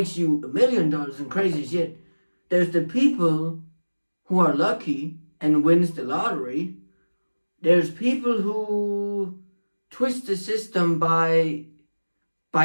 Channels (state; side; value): inverted; both; correlation -1.00